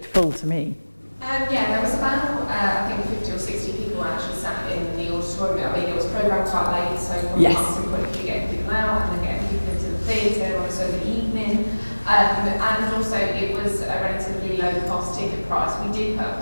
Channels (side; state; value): both; inverted; correlation -1.00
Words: full to me. Yeah, there was about, I think 50 or 60 people actually sat in the auditorium. I mean, it was programmed quite late, so from yes. a marketing point of view, getting people out and then getting people into the theatre on a Sunday evening. And also it was a relatively low cost ticket price. We did put